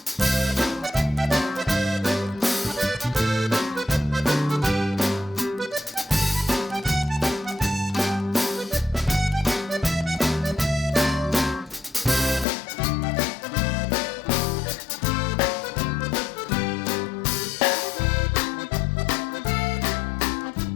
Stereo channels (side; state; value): right; drops out; at 12.5 s